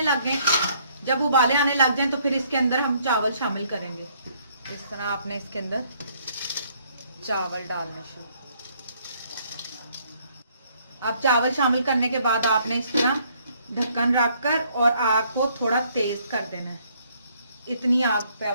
लग गए। जब उबाले आने लग जाए तो फिर इसके अंदर हम चावल शामिल करेंगे। इस तरह आपने इसके अंदर चावल डालना शुरू। अब चावल शामिल करने के बाद आपने इस तरह ढक्कन रखकर और आग को थोड़ा तेज कर देना है। इतनी आग पे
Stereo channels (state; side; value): inverted; both; correlation -0.66